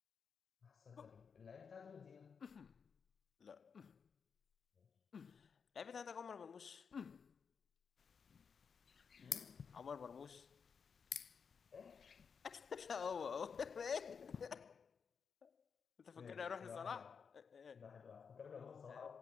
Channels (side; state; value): right; quieter; 6.1 dB